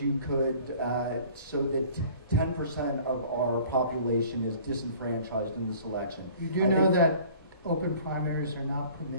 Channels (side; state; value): both; inverted; correlation -0.50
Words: you could, so that 10% of our population is disenfranchised in this election. You do I know think- that open primaries are not